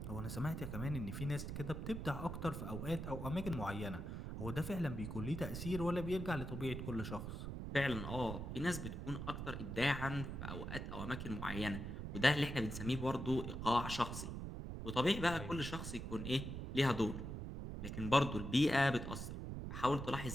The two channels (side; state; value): right; noise; rumble, 5 dB below the sound